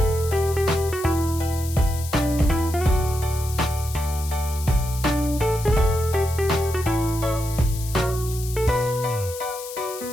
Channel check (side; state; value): left; noise; hiss, 12 dB below the sound